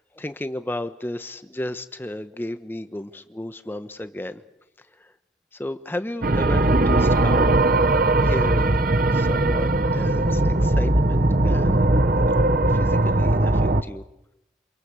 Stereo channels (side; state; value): both; normal; correlation 0.59